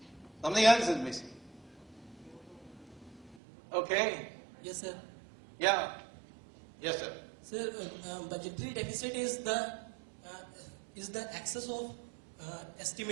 Something else is missing. Okay? Yes, sir. Yeah. Yes, sir. Sir, budgetary deficit is the excess of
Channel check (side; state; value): left; drops out; at 3.4 s